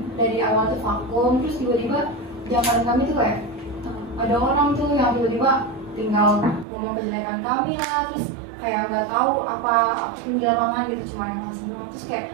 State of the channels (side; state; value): left; drops out; at 6.7 s